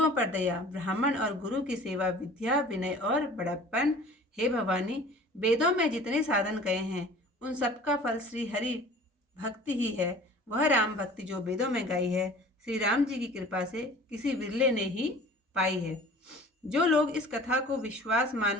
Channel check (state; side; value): normal; both; correlation 0.45